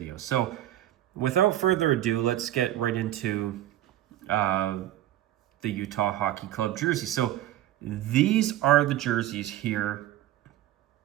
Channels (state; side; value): quieter; left; 13.6 dB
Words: So without further ado, let's get right into the Utah Hockey Club jersey. So these are the jerseys here.